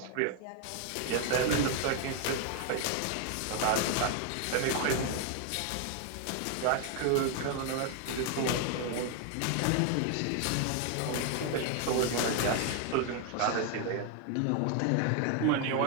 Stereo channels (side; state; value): both; different; correlation 0.01